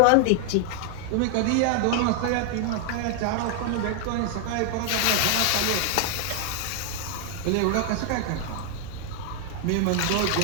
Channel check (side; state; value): both; different; correlation 0.00